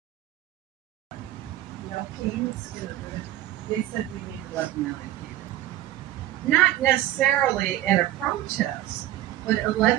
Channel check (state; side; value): quieter; left; 14.2 dB